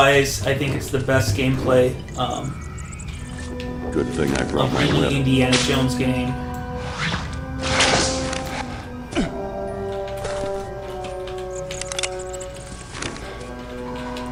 I think it's the best gameplay Good thing I brought of my any whip. Indiana Jones game.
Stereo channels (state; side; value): identical; both; correlation 1.00